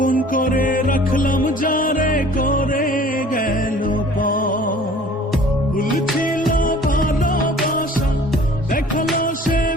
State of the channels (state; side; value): normal; both; correlation 0.50